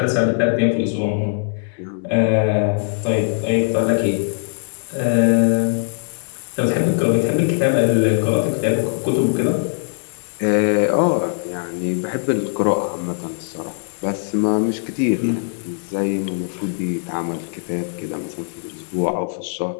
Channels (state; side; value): silent; right; digital silence